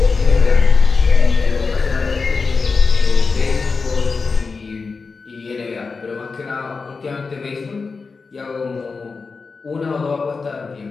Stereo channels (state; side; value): quieter; right; 4.5 dB